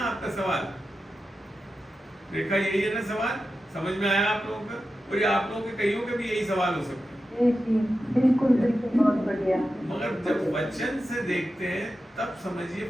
आपका सवाल रेखा, यही है ना सवाल? समझ में आया आप लोगों का? और ये आप लोगों के कईयों के भी यही सवाल हो सकते हैं। बिल्कुल बिल्कुल, बहुत बढ़िया। मगर जब वचन से देखते हैं तब समझिए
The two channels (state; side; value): normal; both; correlation 0.91